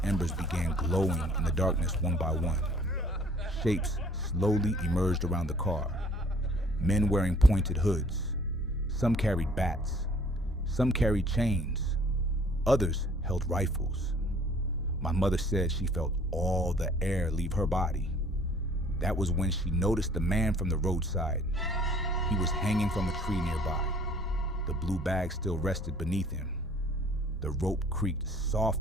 embers began glowing in the darkness one by one. Shapes slowly emerged around the car. Men wearing pointed hoods. Some carried bats. Some carried chains. Others held rifles. My mother said she felt all the air leave her body. That was when she noticed the man from the roadside. He was hanging from a tree nearby. The blue bag still rested beneath him. The rope creaked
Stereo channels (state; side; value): normal; both; correlation 0.55